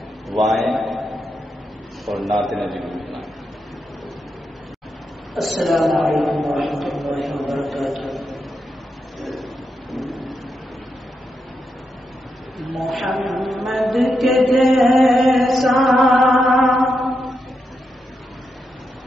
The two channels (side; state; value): both; normal; correlation 0.84